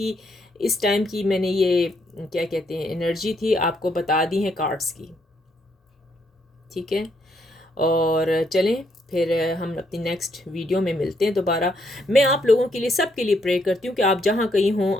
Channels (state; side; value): normal; both; correlation 0.73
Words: इस टाइम की मैंने ये क्या कहते हैं एनर्जी थी आपको बता दी है कार्ड्स की, ठीक है। और चलें फिर हम अपनी नेक्स्ट वीडियो में मिलते हैं दोबारा। मैं आप लोगों के लिए, सब के लिए प्रे करती हूँ कि आप जहाँ कहीं हों